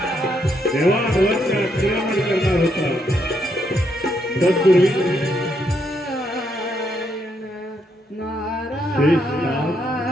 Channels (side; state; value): both; normal; correlation 0.76